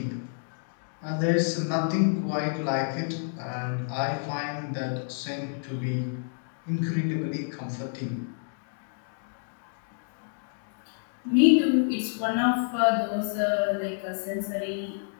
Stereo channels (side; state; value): right; silent; digital silence